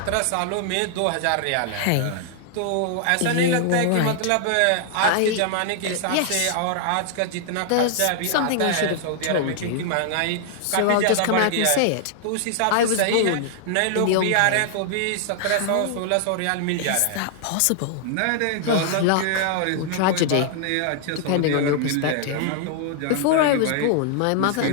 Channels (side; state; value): both; different; correlation -0.01